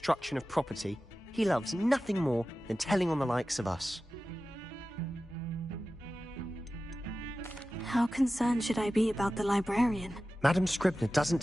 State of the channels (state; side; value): normal; both; correlation 0.95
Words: of property, he loves nothing more than telling on the likes of us. How concerned should I be about the librarian? Madam Scribner doesn't